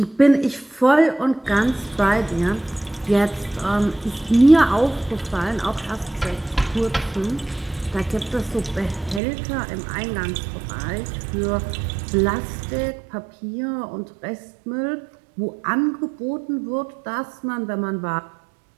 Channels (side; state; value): left; drops out; at 9.2 s